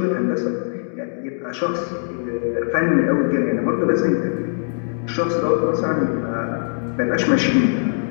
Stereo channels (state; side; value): silent; right; digital silence